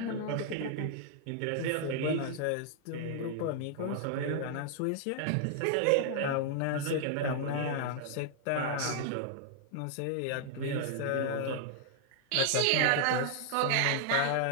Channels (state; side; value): different; both; correlation -0.01